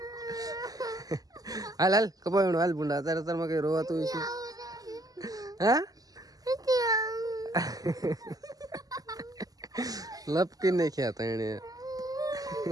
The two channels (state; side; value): late; left; 0.18 ms